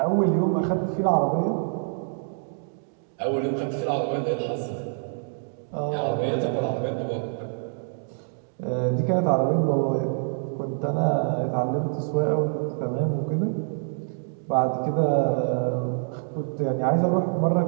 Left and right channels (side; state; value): left; silent; digital silence